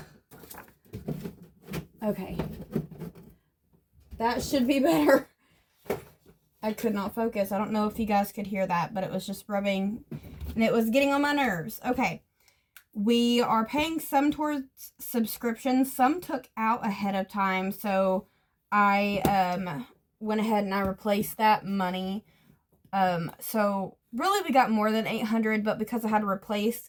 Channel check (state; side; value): identical; both; correlation 1.00